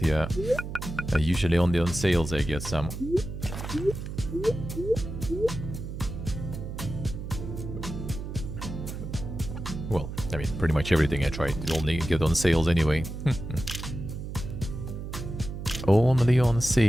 yeah, usually only on sales I get some. Well, I mean, pretty much everything I try to only get on sales anyway. Only on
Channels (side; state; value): right; noise; hum, 7 dB below the sound